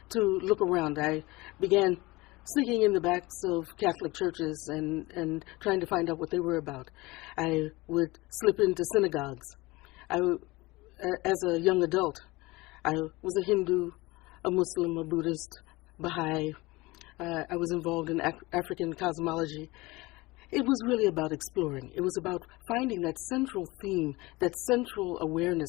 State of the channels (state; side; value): quieter; right; 21.9 dB